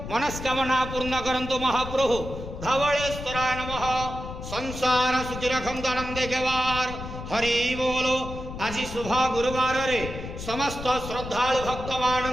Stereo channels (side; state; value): left; noise; rumble, 9 dB below the sound